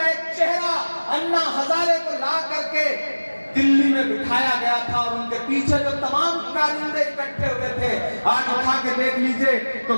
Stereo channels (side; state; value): both; inverted; correlation -1.00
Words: एक चेहरा अन्ना हजारे को ला करके दिल्ली में बिठाया गया था, और उनके पीछे जो तमाम कारिंदे इकट्ठे हुए थे, आज उठा के देख लीजिए तो